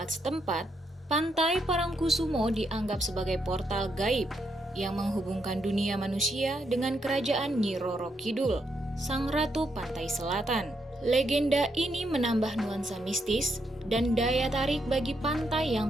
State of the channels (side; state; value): both; normal; correlation 0.79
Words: setempat, Pantai Parangkusumo dianggap sebagai portal gaib yang menghubungkan dunia manusia dengan kerajaan Nyi Roro Kidul, sang ratu pantai selatan. Legenda ini menambah nuansa mistis dan daya tarik bagi pantai